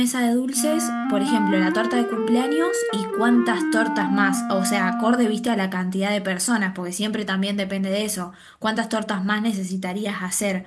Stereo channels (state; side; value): identical; both; correlation 1.00